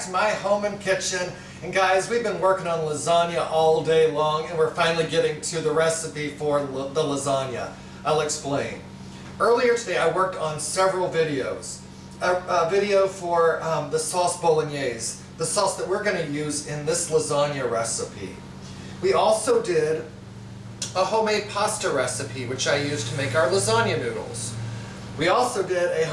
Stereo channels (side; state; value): both; identical; correlation 1.00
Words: to my home and kitchen. And guys, we've been working on lasagna all day long and we're finally getting to the recipe for the lasagna. I'll explain. Earlier today I worked on several videos. A video for the sauce bolognese, the sauce that we're going to use in this lasagna recipe. We also did a homemade pasta recipe which I used to make our lasagna noodles. We also did a